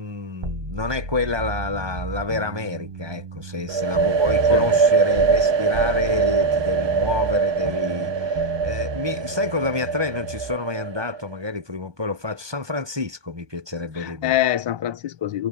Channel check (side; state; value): left; late; 1.2 ms